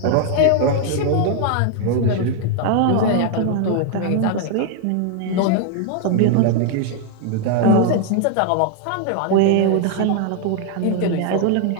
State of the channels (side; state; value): both; different; correlation 0.00